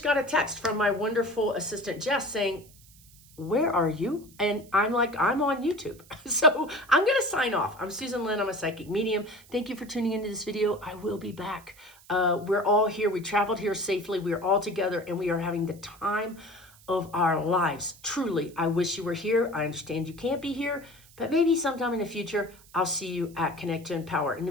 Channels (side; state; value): right; noise; hiss, 25 dB below the sound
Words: got a text from my wonderful assistant, Jess, saying, where are you? And I'm like, I'm on YouTube. So I'm going to sign off. I'm Susan Lynn. I'm a psychic medium. Thank you for tuning into this video. I will be back. We're all here. We traveled here safely. We are all together, and we are having the time of our lives. Truly, I wish you were here. I understand you can't be here, but maybe sometime in the future, I'll see you at Connect to Empower. In the